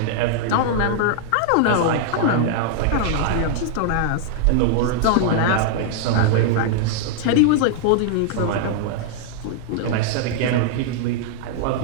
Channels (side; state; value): both; different; correlation -0.01